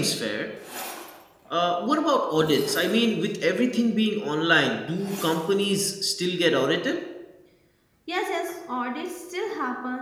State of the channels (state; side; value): identical; both; correlation 1.00